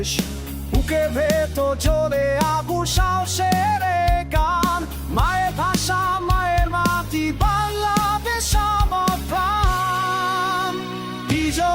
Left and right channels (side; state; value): both; identical; correlation 1.00